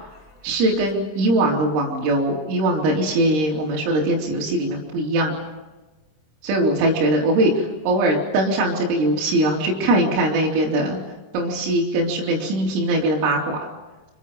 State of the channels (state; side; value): late; left; 26 ms